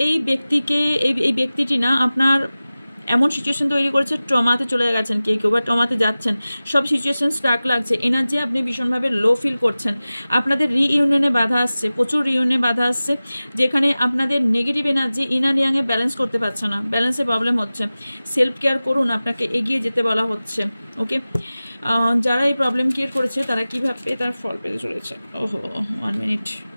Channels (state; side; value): inverted; both; correlation -0.97